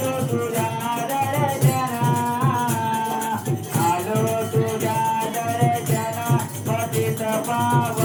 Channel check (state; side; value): identical; both; correlation 1.00